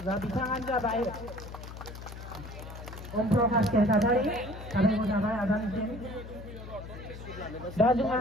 दा बिथाङानो जाबाय प्रकाश नार्जारि साबायखर थाबाय आदानिसिम दा जोंहा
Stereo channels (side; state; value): left; noise; hum, 12 dB below the sound